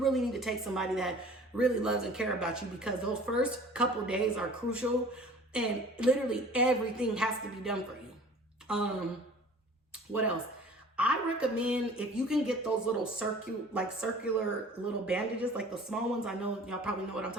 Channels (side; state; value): both; normal; correlation 0.47